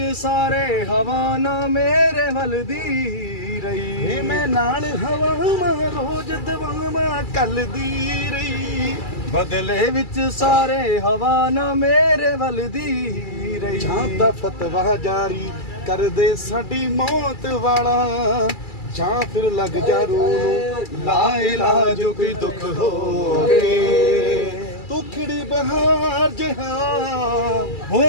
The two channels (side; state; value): right; late; 2.3 ms